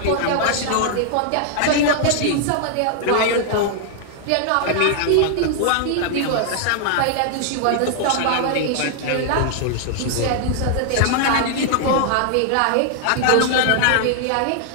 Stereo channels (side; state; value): both; different; correlation 0.00